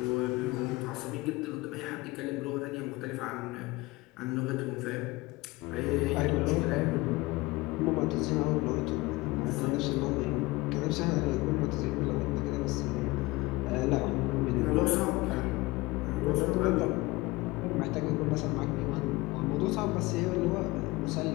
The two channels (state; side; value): quieter; right; 21.7 dB